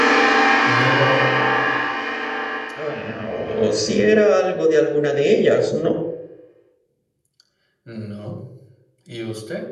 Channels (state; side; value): identical; both; correlation 1.00